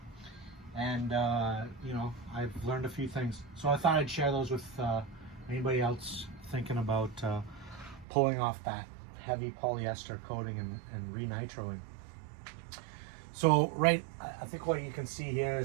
And you know, I've learned a few things, so I thought I'd share those with anybody else thinking about pulling off that heavy polyester coating and re-nitroing. So I think what you can see here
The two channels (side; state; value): left; drops out; at 8.1 s